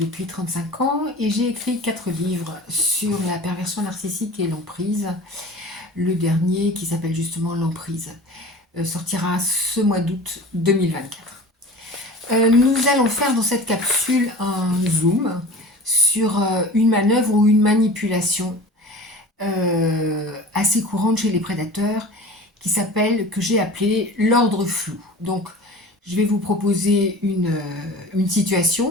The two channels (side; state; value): both; normal; correlation 0.38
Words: 35 ans et j'ai écrit 4 livres sur la perversion narcissique et l'emprise. Le dernier, qui s'appelle justement L'emprise, sortira ce mois d'août 2024. Nous allons faire dans cette capsule un zoom sur une manœuvre ou une manipulation assez courante chez les prédateurs que j'ai appelé l'ordre flou. Donc, je vais vous proposer une